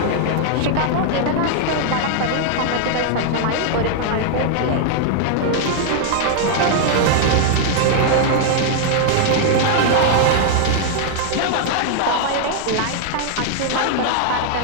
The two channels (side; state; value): both; different; correlation 0.00